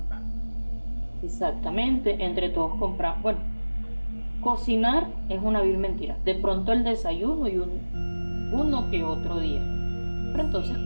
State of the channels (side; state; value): both; inverted; correlation -1.00